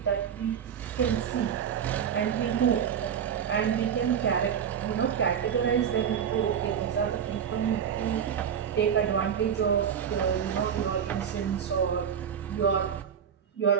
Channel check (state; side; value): quieter; left; 8.0 dB